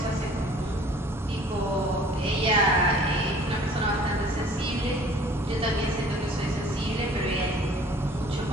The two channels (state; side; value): normal; both; correlation 0.51